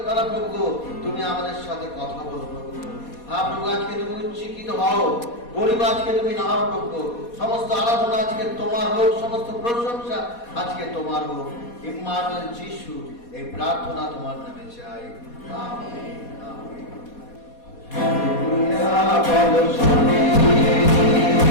দ্বারা প্রভু তুমি আমাদের সাথে কথা বলো প্রভু। হ্যাঁ প্রভু, আজকে তুমি উচ্চকিত হও, গরিব আজকে তুমি নাও প্রভু। সমস্ত আরাধনা আজকে তোমার হোক, সমস্ত প্রশংসা আজকে তোমার হোক। ইম্মানুয়েল যিশু এই প্রার্থনা তোমার নামে চাই, আমেন, আমেন। হালেলুয়া বলো শুনি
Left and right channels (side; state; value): right; late; 4.2 ms